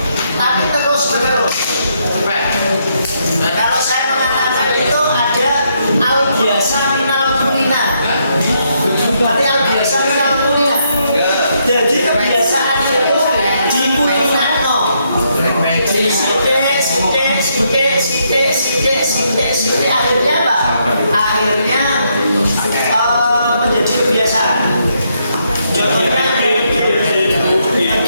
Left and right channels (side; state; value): both; inverted; correlation -0.76